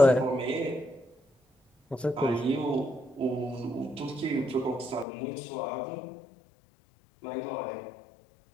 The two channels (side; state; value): right; drops out; at 5.1 s